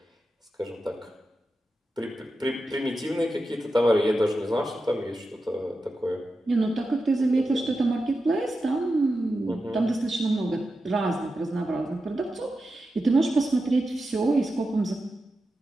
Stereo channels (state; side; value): normal; both; correlation 0.90